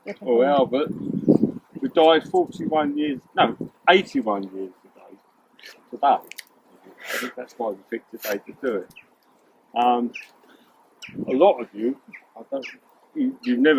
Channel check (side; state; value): both; identical; correlation 1.00